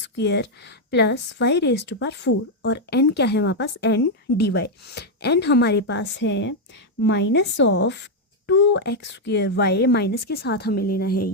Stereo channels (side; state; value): both; normal; correlation 0.00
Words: plus y raise to power 4, और n क्या है हमारे पास, n dy। n हमारे पास है माइनस ऑफ 2x²y, माइनस के साथ हमें लेना है